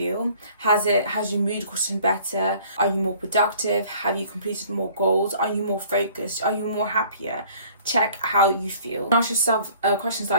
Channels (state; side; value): inverted; both; correlation -0.53